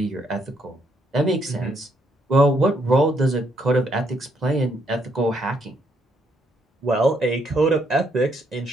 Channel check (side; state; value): both; normal; correlation 0.73